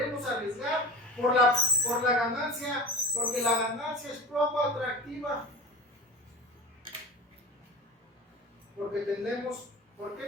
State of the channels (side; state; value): both; normal; correlation 0.34